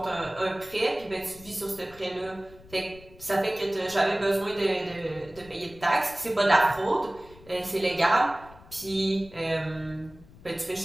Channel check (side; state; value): left; noise; rumble, 22 dB below the sound